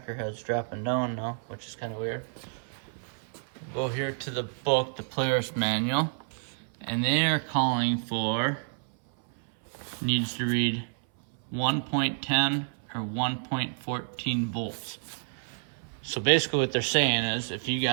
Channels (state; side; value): silent; left; 57 dB below the other